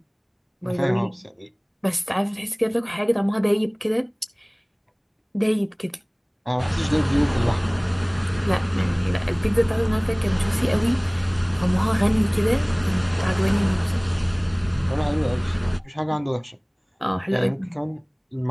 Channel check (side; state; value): both; identical; correlation 1.00